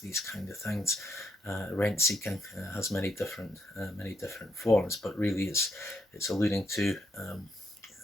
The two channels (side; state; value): both; normal; correlation 0.77